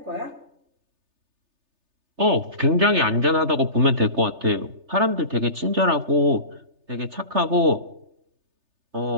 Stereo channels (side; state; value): left; late; 3.3 ms